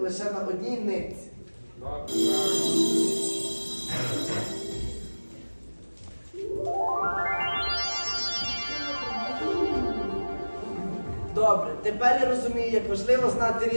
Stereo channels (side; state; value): both; inverted; correlation -1.00